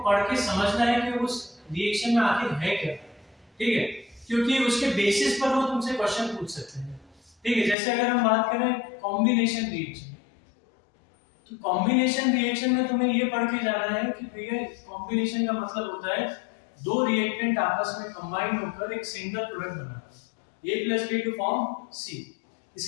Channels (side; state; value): right; drops out; at 7.8 s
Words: पढ़ के समझना है कि उस रिएक्शन में आखिर है क्या, ठीक है, क्योंकि उसके बेसिस पर वो तुमसे क्वेश्चन पूछ सकते हैं, ठीक है। जैसे अगर हम बात करें कॉम्बिनेशन रिएक्शन, तो कॉम्बिनेशन रिएक्शन में तुम्हें ये पढ़ के जाना है कि भैया कॉम्बिनेशन का मतलब होता है दो रिएक्टेंट आपस में कंबाइन होकर एक सिंगल प्रोडक्ट बनाना, A plus B to form C।